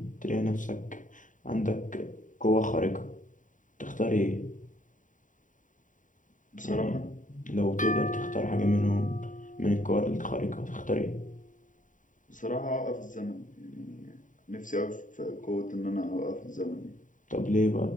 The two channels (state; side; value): late; right; 0.38 ms